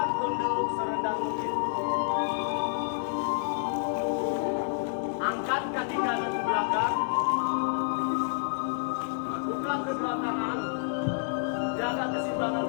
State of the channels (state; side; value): silent; right; digital silence